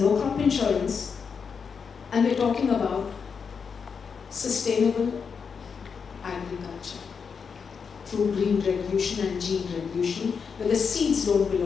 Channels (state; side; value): quieter; right; 6.0 dB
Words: no crop insurance, and we're talking about sustainable agriculture through green revolution and gene revolution, where the seeds don't